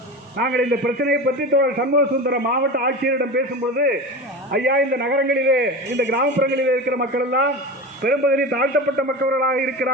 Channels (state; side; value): normal; both; correlation 0.27